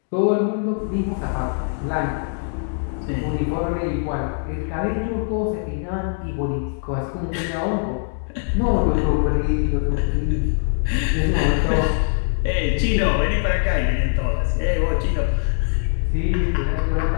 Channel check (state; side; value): silent; right; digital silence